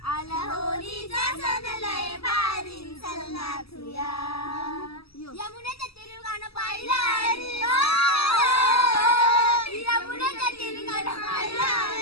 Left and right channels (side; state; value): right; late; 0.77 ms